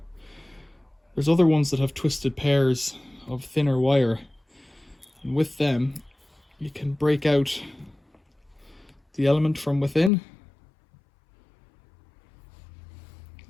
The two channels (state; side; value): drops out; right; at 10.1 s